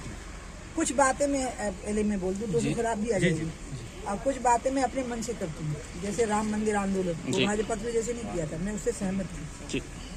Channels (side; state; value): both; identical; correlation 1.00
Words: कुछ बातें मैं बोल दूं तो शराब भी आ जाएगी, और कुछ बातें मैं अपने मन से करती हूँ। जैसे राम मंदिर आंदोलन, वो भाजपा ने जैसे नहीं किया था, मैं उससे सहमत थी।